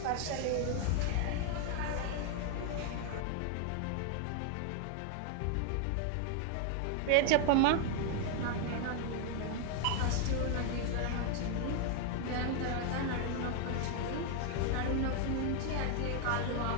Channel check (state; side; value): different; both; correlation 0.00